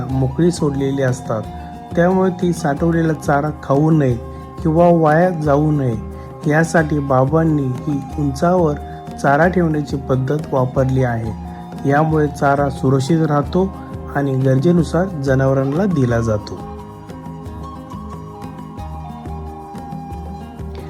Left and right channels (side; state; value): both; identical; correlation 1.00